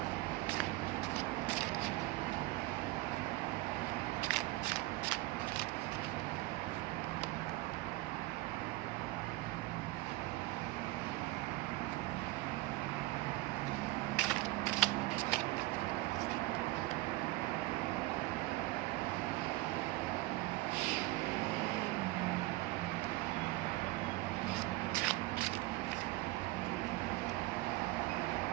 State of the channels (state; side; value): quieter; left; 19.6 dB